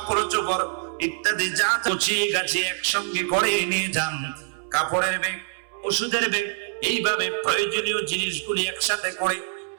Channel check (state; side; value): silent; left; 62 dB below the other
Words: চোপড় ইত্যাদি যা গুছিয়ে গাছিয়ে একসঙ্গে করে নিয়ে যান। কাপড়ের ব্যাগ, ওষুধের ব্যাগ, এইভাবে প্রয়োজনীয় জিনিসগুলি একসাথে করে,